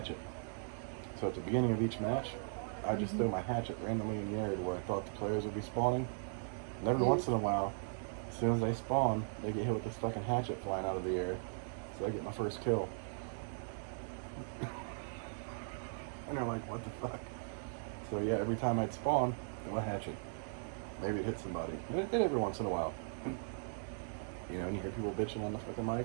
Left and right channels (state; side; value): silent; left; digital silence